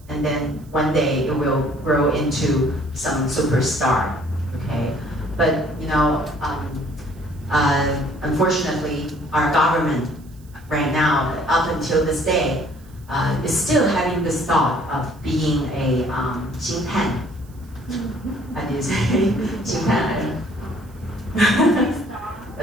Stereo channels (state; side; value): noise; right; hiss, 29 dB below the sound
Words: and then one day it will grow into some superstar, okay? But, unfortunately, our government right now, up until this day, is still having this thought of being a 星探. How do you say 星探?